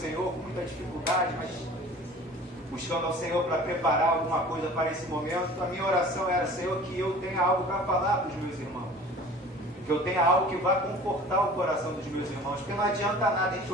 com muita dificuldade, mas buscando ao Senhor para preparar alguma coisa para esse momento, a minha oração era, Senhor, que eu tenha algo para falar para os meus irmãos. Que eu tenha algo que vá confortar o coração dos meus irmãos. Porque não adianta nada a gente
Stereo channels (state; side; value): normal; both; correlation 0.44